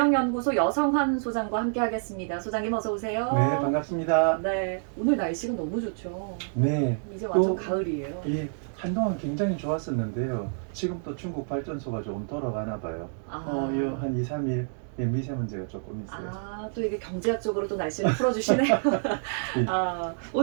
여성환 소장과 함께하겠습니다. 소장님 어서 오세요. 네, 반갑습니다. 네, 오늘 날씨가 너무 좋죠. 네, 이제 완전 또, 가을이에요. 예, 한동안 굉장히 좋았었는데요. 지금 또 중국 발전소가 조금 돌아가나 봐요. 한 2, 3일 미세먼지가 조금 있어요. 또 이게 경제학적으로 또 날씨를 풀어주시네요.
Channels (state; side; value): silent; left; digital silence